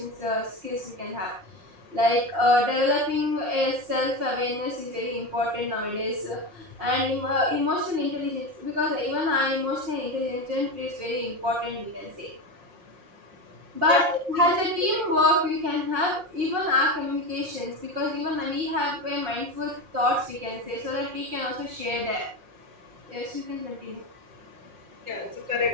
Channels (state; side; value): late; left; 5.6 ms